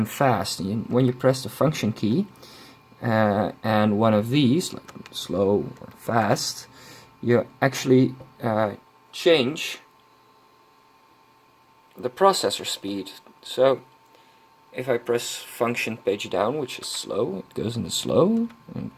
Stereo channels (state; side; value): identical; both; correlation 1.00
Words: fast. When you press the function key and one of these, like slow or fast, you actually change the processor speed. So if I press function page down, which is slow, it goes into slow and it